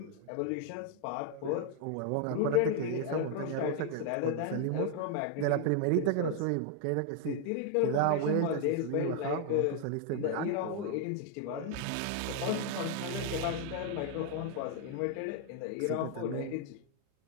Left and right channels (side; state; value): both; different; correlation 0.00